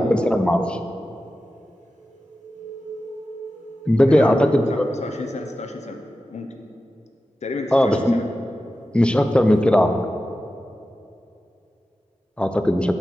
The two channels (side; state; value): both; normal; correlation 0.93